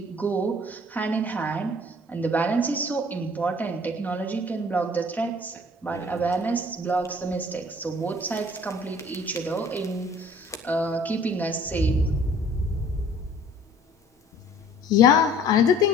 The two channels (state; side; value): normal; both; correlation 0.52